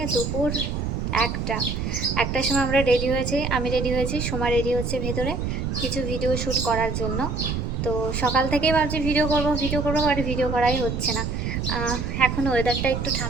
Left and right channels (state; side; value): noise; right; rumble, 2 dB below the sound